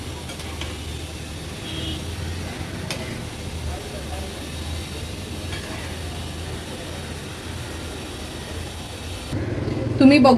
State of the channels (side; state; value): both; identical; correlation 1.00